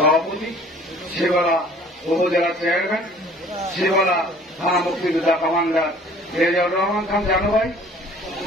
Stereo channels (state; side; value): normal; both; correlation 0.52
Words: শিবলা উপজেলা চেয়ারম্যান, শিবলা থানা মুক্তিযোদ্ধা কমান্ডার রেজাউর রহমান খান জানু ভাই,